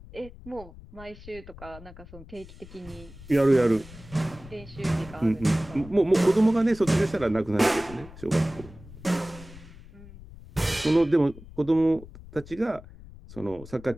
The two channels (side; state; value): left; noise; rumble, 18 dB below the sound